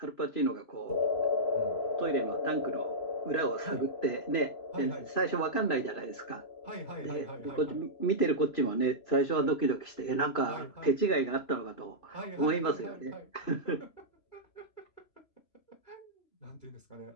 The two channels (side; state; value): right; late; 3.0 ms